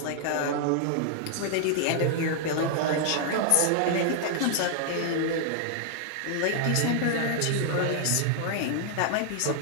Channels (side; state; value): both; different; correlation -0.01